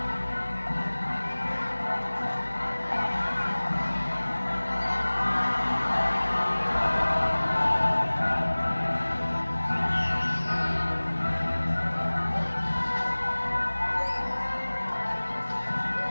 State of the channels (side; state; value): both; inverted; correlation -1.00